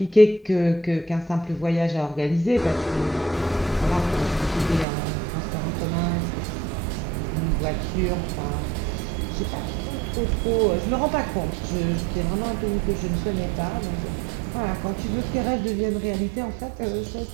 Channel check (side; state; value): left; drops out; at 4.9 s